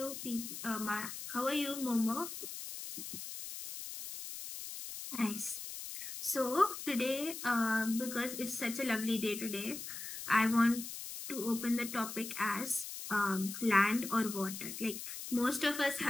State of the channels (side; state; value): left; noise; hiss, 8 dB below the sound